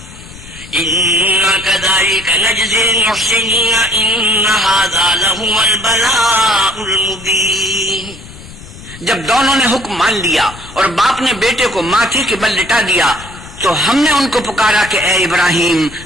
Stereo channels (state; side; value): noise; left; rumble, 17 dB below the sound